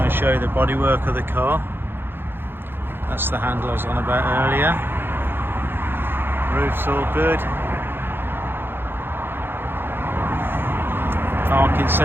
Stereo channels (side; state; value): left; late; 0.10 ms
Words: and show you the bodywork of the car. That's the handle I was on about earlier. Roof's all good. Parking